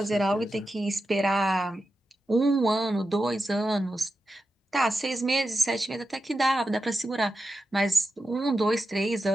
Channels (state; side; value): normal; both; correlation 0.90